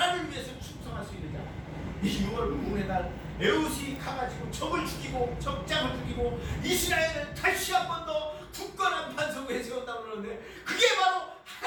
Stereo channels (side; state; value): both; identical; correlation 1.00